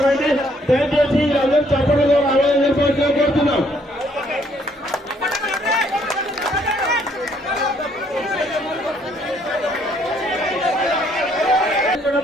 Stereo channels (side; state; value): both; normal; correlation 0.67